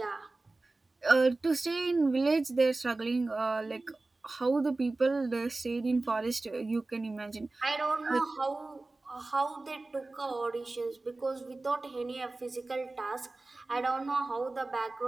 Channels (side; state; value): left; quieter; 3.2 dB